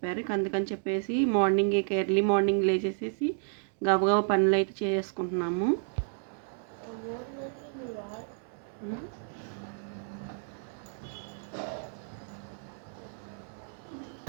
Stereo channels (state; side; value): silent; left; digital silence